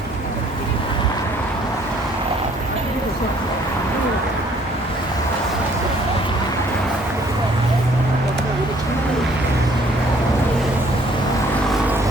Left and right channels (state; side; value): normal; both; correlation 0.61